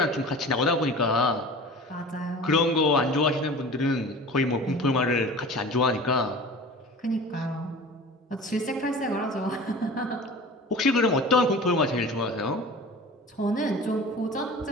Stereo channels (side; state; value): both; normal; correlation 0.39